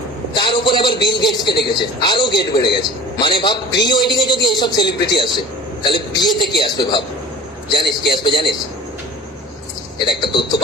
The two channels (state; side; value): normal; both; correlation 0.42